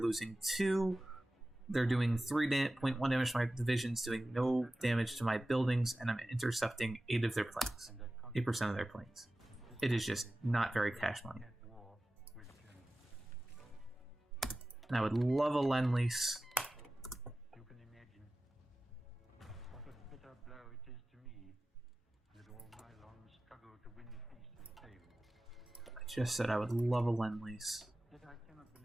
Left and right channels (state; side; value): normal; both; correlation 0.96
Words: 2. They're doing 3.1 damage to my divisions, doing no damage to my buildings, and I'm intercepting 8 of their planes. 8% of their planes. It is just not very cash money. And I would love a Lend-Lease. I just said I would love a Lend-Lease.